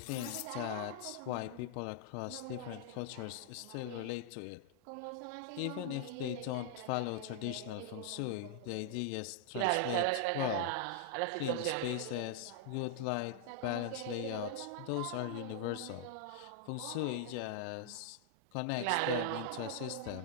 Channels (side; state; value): both; different; correlation -0.01